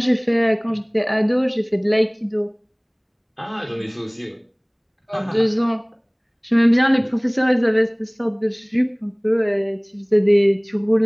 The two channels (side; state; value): both; identical; correlation 1.00